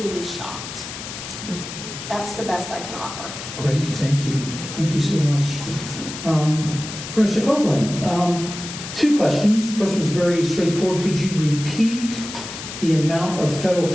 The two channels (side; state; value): left; noise; hiss, 10 dB below the sound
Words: shocked. That's the best I can offer. Great, thank you. Thank you so much. Professor Copeland, two questions. First was very straightforward. Could you repeat the amount of federal